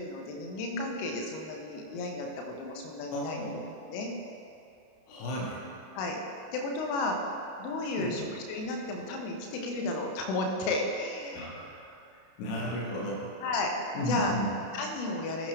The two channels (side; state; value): right; late; 32 ms